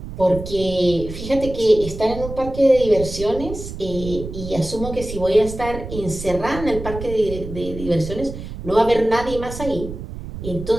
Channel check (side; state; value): right; noise; rumble, 10 dB below the sound